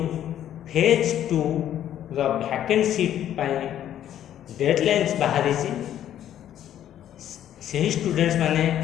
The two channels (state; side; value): quieter; right; 11.1 dB